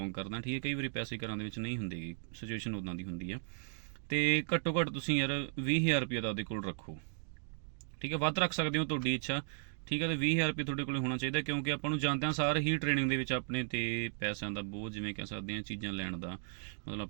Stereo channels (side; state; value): left; silent; digital silence